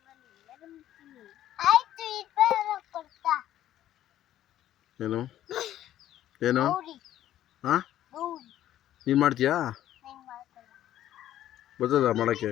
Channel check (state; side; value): quieter; right; 12.5 dB